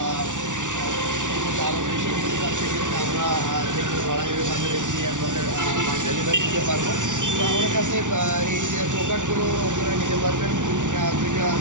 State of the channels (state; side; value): late; left; 0.87 ms